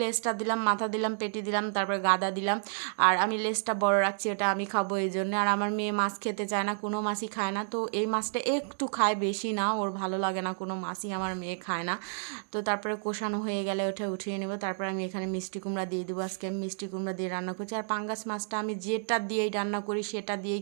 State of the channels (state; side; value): silent; left; digital silence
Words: লেজটা দিলাম, মাথা দিলাম, পেটি দিলাম, তারপরে গাদা দিলাম। আর আমি লেজটা বড় রাখছি, ওটা আমি খাবো এই জন্য। আর আমার মেয়ে মাছ খেতে চায় না, কোনো মাছই খায় না, তো এই মাছটা একটু খায়, বেশি না, ওর ভালো লাগে না, কোনো মাছই আমার মেয়ে খায় না। তো তারপরে কষানো হয়ে গেলে ওটা উঠিয়ে নেব। তারপরে আমি এখানে মিষ্টি কুমড়া দিয়ে দেবো। আজকে আমি মিষ্টি কুমড়া দিয়ে রান্না করছি। আর পাঙ্গাস মাছটা আমি যেটা দিয়েই রান্না করি সেটা দিয়েই